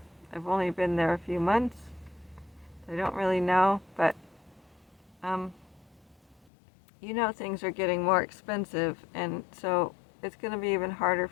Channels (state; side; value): drops out; right; at 6.5 s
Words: I've only been there a few months. I don't really know, but you know, things are getting more expensive, and so it's going to be even harder